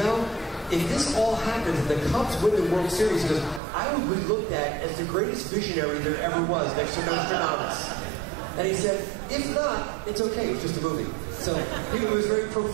if this all happens, if the Cubs win the World Series, he goes, I would be looked at as the greatest visionary there ever was next to Nostradamus. And he said, if not, it's okay, it's just a movie. So he was very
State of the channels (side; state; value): left; drops out; at 3.6 s